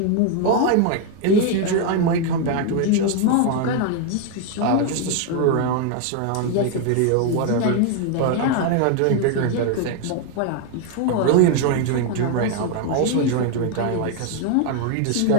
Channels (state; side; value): different; both; correlation 0.01